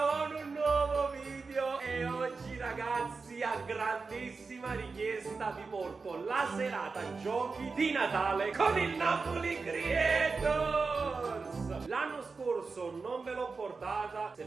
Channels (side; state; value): left; quieter; 4.4 dB